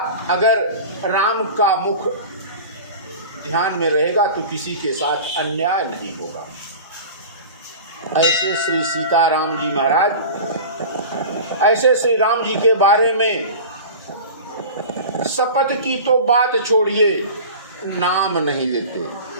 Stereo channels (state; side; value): inverted; both; correlation -0.35